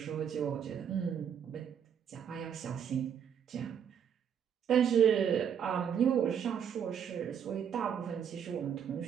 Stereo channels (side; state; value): left; quieter; 8.2 dB